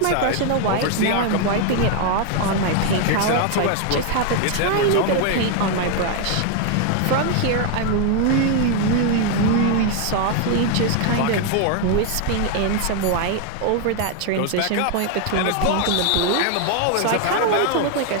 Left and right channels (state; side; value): different; both; correlation 0.01